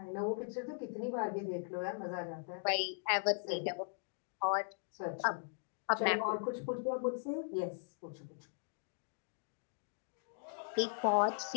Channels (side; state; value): right; silent; digital silence